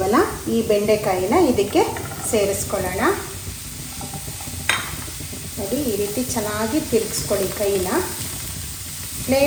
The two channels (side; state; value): both; identical; correlation 1.00